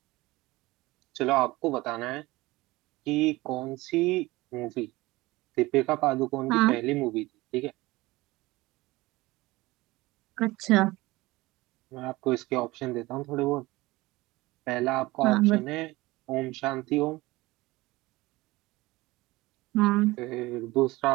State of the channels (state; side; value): quieter; left; 20.3 dB